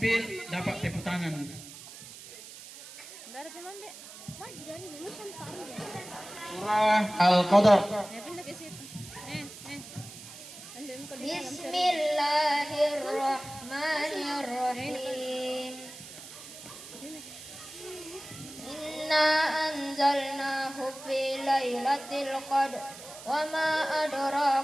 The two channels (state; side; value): noise; right; hiss, 15 dB below the sound